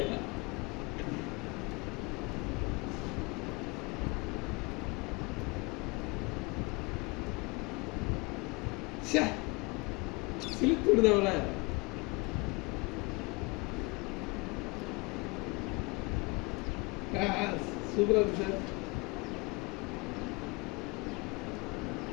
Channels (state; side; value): quieter; right; 28.4 dB